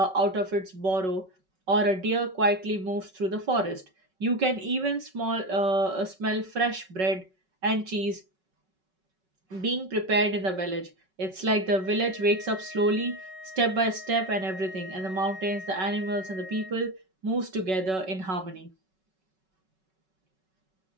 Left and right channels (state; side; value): late; left; 5.3 ms